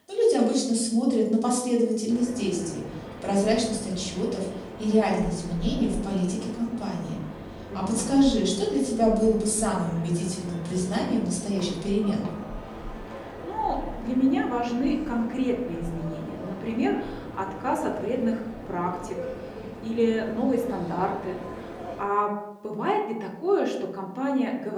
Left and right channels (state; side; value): identical; both; correlation 1.00